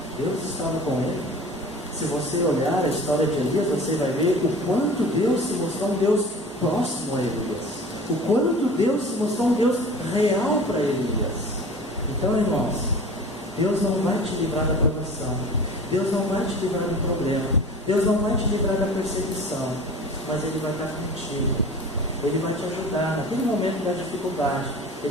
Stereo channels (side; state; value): both; normal; correlation 0.40